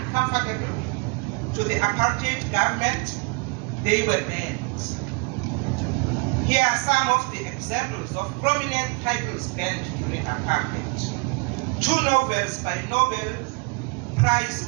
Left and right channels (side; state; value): left; quieter; 31.5 dB